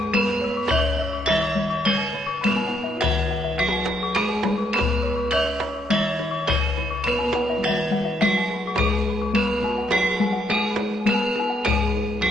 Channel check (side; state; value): both; normal; correlation 0.74